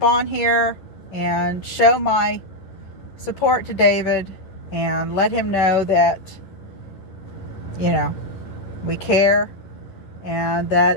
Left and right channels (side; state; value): right; late; 10 ms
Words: on here and show my support to David and let him know that, we care and that